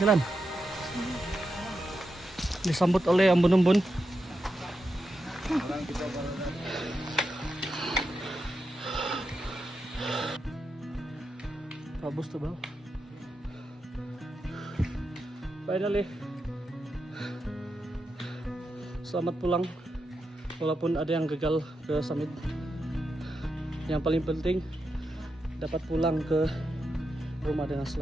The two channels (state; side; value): normal; both; correlation 0.87